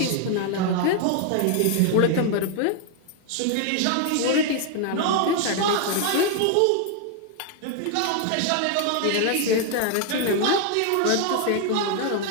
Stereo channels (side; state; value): both; different; correlation 0.00